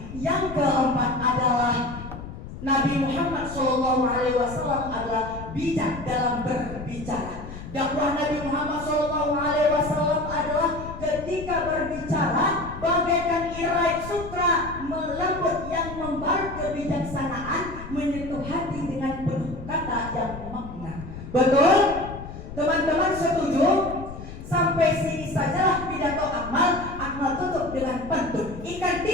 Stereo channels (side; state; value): left; noise; rumble, 11 dB below the sound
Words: Yang keempat adalah Nabi Muhammad SAW adalah bijak dalam berbicara. Dakwah Nabi Muhammad SAW adalah ketika berbicara bagaikan irai sutra melembut yang membalut kebijaksanaan, menyentuh hati dengan penuh kata yang makna. Betul?